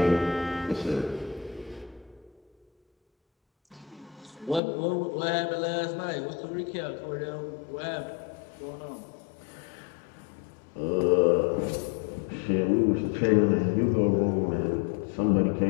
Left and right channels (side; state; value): right; drops out; at 4.6 s